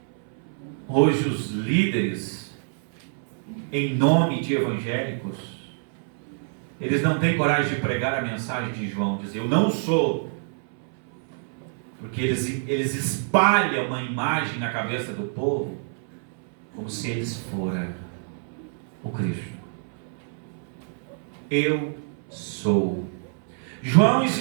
Hoje os líderes, em nome de evangélicos, eles não têm coragem de pregar a mensagem de João, dizer: eu não sou. Porque eles espalham uma imagem na cabeça do povo, como se eles fossem o Cristo. Eu sou. João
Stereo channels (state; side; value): silent; left; 61 dB below the other